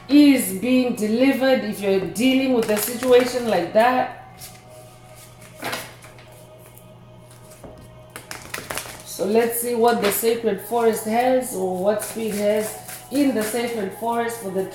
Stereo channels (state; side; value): identical; both; correlation 1.00